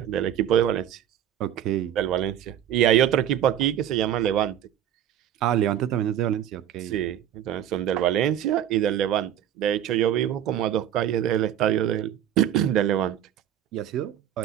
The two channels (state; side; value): quieter; left; 10.7 dB